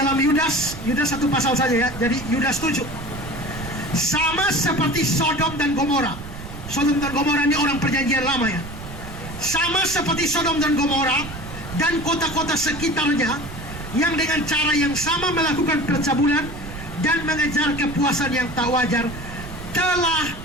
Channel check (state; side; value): noise; right; rumble, 11 dB below the sound